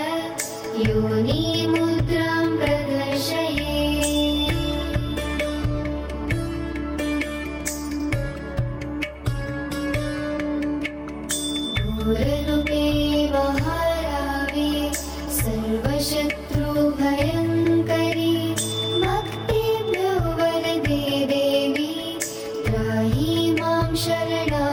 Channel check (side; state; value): both; identical; correlation 1.00